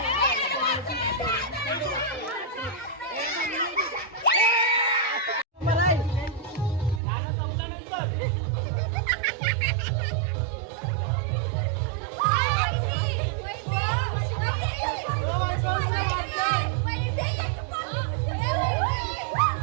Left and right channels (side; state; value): left; drops out; at 7.0 s